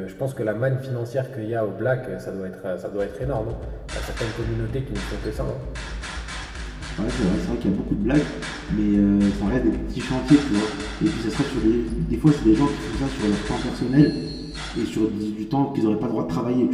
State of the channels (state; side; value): identical; both; correlation 1.00